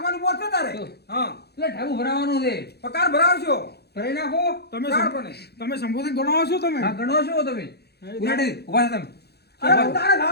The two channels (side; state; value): right; late; 0.48 ms